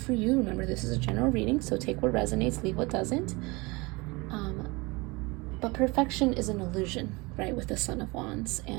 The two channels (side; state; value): left; quieter; 25.2 dB